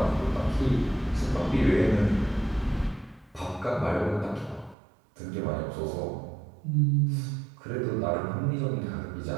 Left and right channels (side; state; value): left; drops out; at 4.8 s